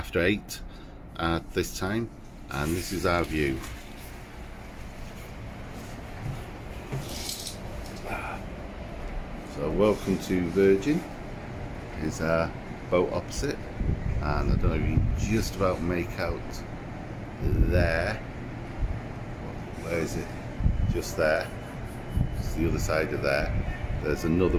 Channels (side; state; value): both; identical; correlation 1.00